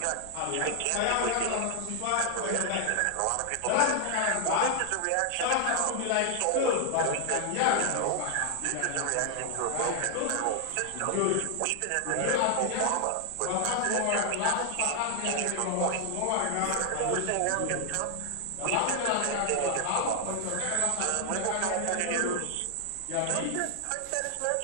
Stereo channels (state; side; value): different; both; correlation 0.00